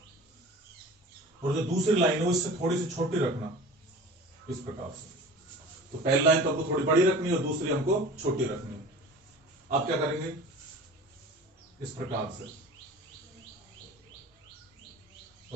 और जो दूसरी लाइन है वो इससे थोड़ी सी छोटी रखना, इस प्रकार से। तो पहली लाइन तो हमको थोड़ी बड़ी रखनी है, और दूसरी हमको छोटी रखनी है। आप क्या करेंगे, इस प्रकार से,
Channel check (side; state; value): both; normal; correlation 0.40